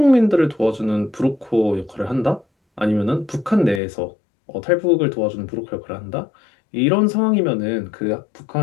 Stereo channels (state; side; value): drops out; right; at 3.8 s